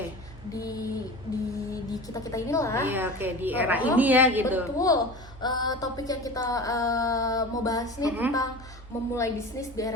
di kita inilah. Iya, oke, di era ini ya gitu. Betul. Topik yang kita mau bahas nih tentang memulai bisnis di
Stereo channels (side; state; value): both; normal; correlation 0.33